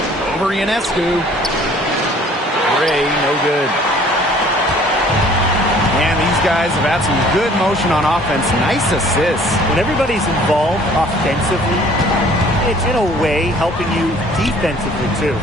Over Ionescu. Gray, no good. And these guys have had some good motion on offense. Nice assists. When everybody's involved offensively, it's in a way helping you defensively too.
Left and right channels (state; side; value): normal; both; correlation 0.54